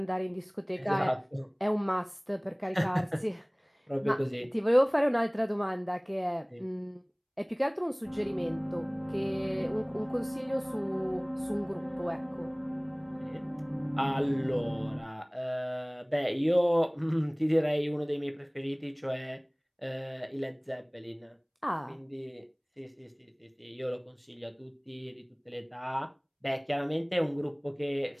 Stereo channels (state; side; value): identical; both; correlation 1.00